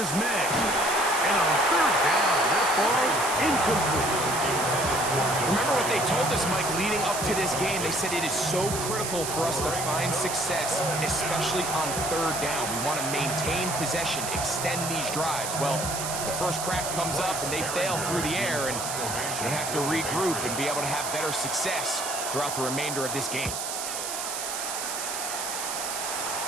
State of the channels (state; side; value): noise; right; hiss, 4 dB below the sound